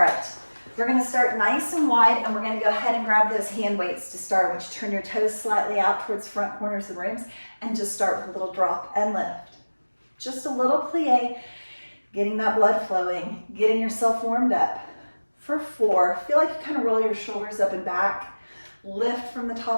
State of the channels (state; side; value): inverted; both; correlation -1.00